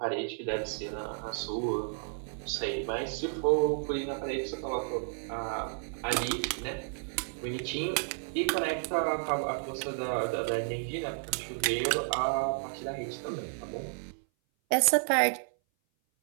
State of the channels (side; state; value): left; silent; 56 dB below the other